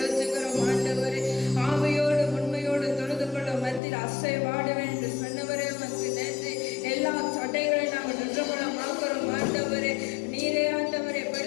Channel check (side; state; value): right; drops out; at 3.8 s